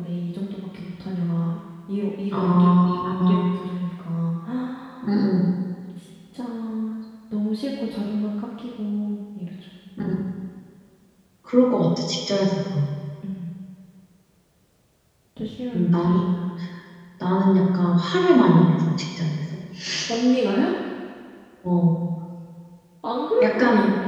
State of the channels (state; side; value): identical; both; correlation 1.00